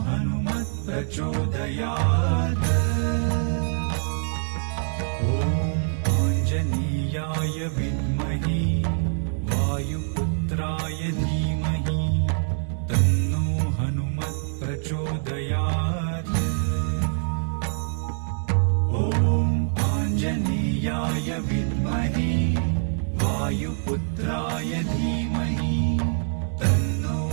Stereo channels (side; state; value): left; silent; digital silence